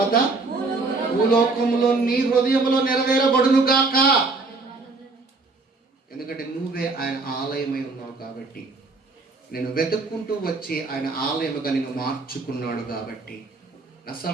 భూలోకములో నీ హృదయంలో నెరవేరబడును గాక. ఎందుకంటే నువ్వే ఆయన ఆలయమై ఉన్నావు కాబట్టి, నేను వెతుక్కుంటూ వచ్చి ఆయన ఆలయముగా నిన్ను మార్చుకున్నాడు కాబట్టి. నా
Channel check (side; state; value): left; quieter; 3.6 dB